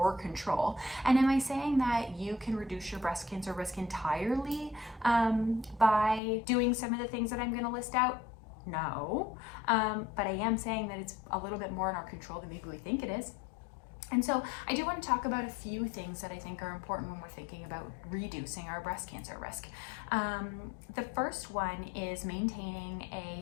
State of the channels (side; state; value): right; drops out; at 6.2 s